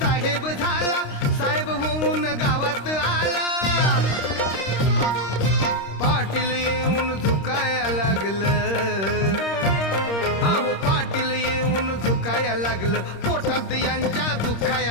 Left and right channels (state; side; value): late; right; 26 ms